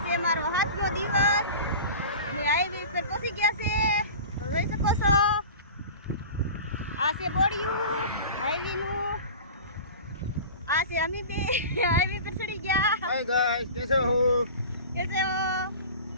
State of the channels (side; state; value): both; inverted; correlation -0.36